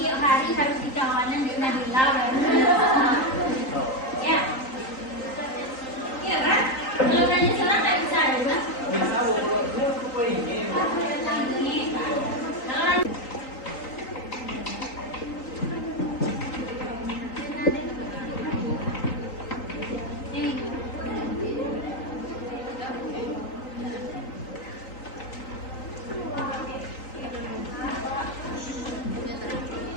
hari harus dicalonin di Nabila baru. Ya. Iya kan? Kalau nanya salah nggak bisa ada kan? Bisa kalau ini.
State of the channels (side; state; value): right; late; 3.9 ms